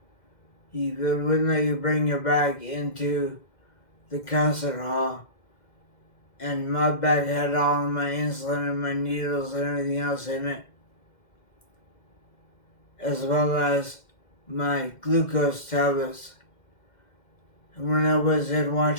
They wouldn't let you bring your bag into the concert hall. And my bag had all of my insulin and my needles and everything else in it, as well as my glucose tablets. And when I was in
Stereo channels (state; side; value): late; right; 2.1 ms